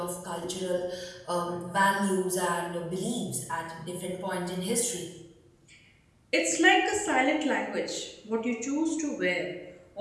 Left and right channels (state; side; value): identical; both; correlation 1.00